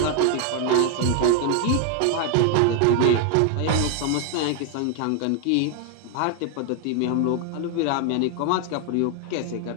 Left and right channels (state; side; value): different; both; correlation 0.01